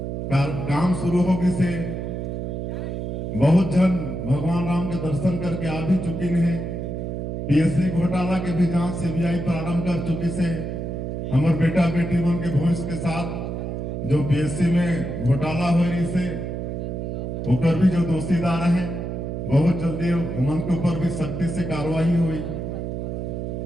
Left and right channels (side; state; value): right; noise; hum, 4 dB below the sound